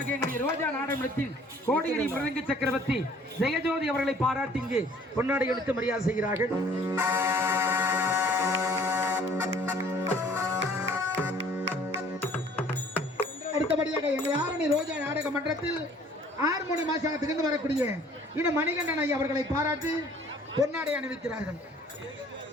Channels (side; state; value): both; normal; correlation 0.55